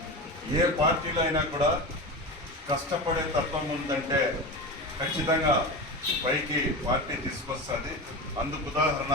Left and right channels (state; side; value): normal; both; correlation 0.25